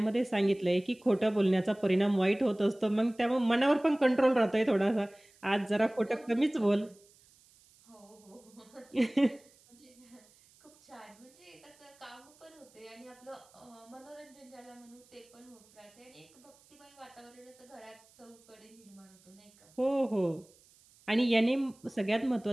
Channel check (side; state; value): right; noise; hiss, 28 dB below the sound